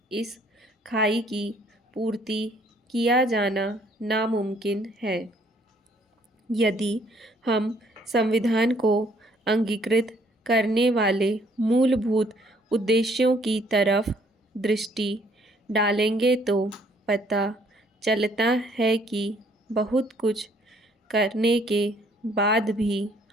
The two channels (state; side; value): normal; both; correlation 0.63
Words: इस खाई की पूर्ति किया जाना नामुमकिन है। यदि हम संविधान को अंगीकृत करने वाले मूलभूत उद्देश्यों की तरफ दृष्टि डालेंगे तो पता चलता है कि बहुत कुछ करने के बाद भी